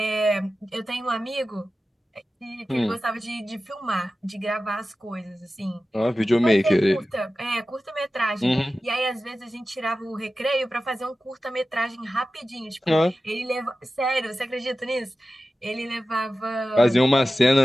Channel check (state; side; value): normal; both; correlation 0.94